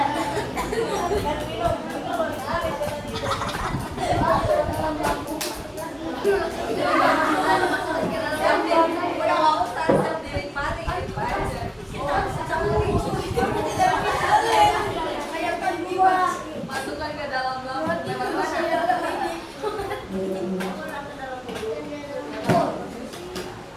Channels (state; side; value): identical; both; correlation 1.00